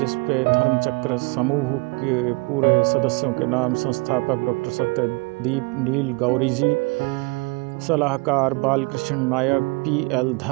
पे धर्मचक्र समूह के पूरे सदस्यों के नाम, संस्थापक डॉक्टर सत्यदीप नील गौरी जी, सलाहकार बालकृष्ण नायक, PL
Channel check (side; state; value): left; quieter; 29.1 dB